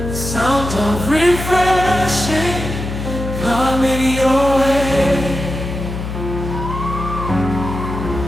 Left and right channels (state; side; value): noise; left; hum, 6 dB below the sound